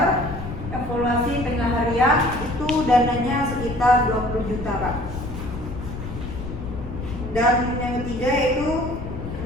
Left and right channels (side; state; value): left; noise; rumble, 8 dB below the sound